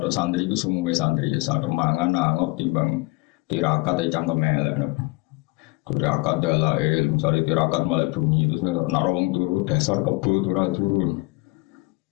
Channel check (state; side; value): quieter; right; 24.2 dB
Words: santri iku sumuwe santri ya sak mangan nangop timbang tirakat cangkem elek. Tirakat dalail, misale tirakat malah bunyi terus nek wong turu dasar kebo turu.